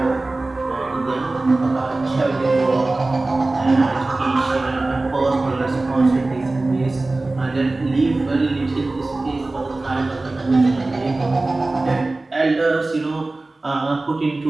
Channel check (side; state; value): left; quieter; 3.1 dB